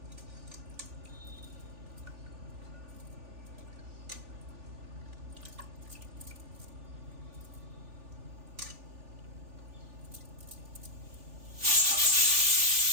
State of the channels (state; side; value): late; left; 3.4 ms